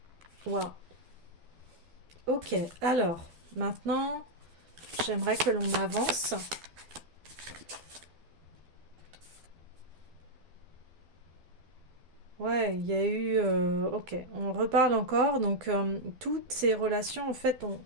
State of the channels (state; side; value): late; left; 12 ms